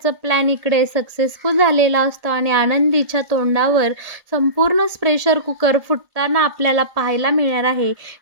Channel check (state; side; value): late; left; 1.8 ms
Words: प्लॅन इकडे सक्सेसफुल झालेला असतो आणि आनंदीच्या तोंडावर संपूर्ण प्रेशर कुकर फुटताना आपल्याला पाहायला मिळणार आहे.